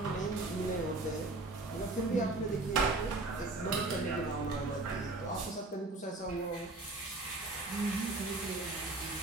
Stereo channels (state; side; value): quieter; left; 3.1 dB